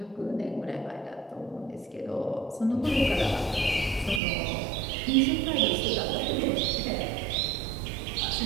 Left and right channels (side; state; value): left; drops out; at 4.2 s